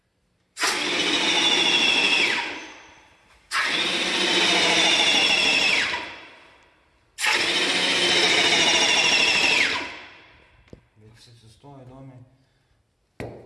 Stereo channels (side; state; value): both; identical; correlation 1.00